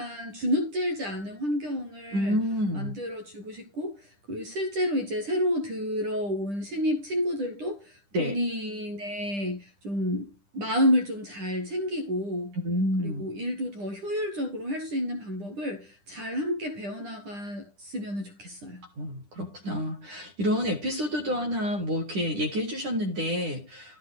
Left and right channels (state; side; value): late; left; 10 ms